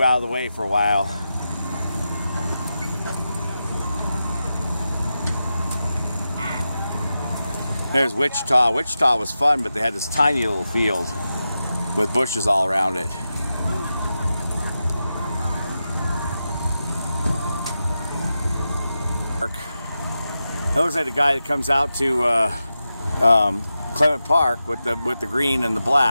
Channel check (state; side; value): inverted; both; correlation -0.90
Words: out of the way for a while. There's Wichita. Wichita was fun, but they had this tiny little field with bushes all around it. It looks like the guy that comes out to Clement Park with the green and the